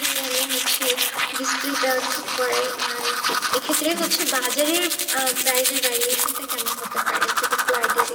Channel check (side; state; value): both; identical; correlation 1.00